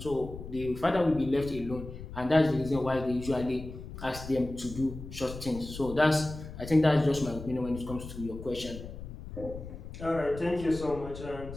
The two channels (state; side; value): noise; left; rumble, 11 dB below the sound